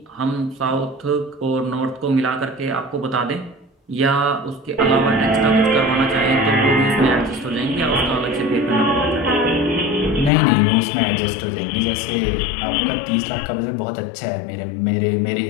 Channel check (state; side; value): drops out; right; at 10.3 s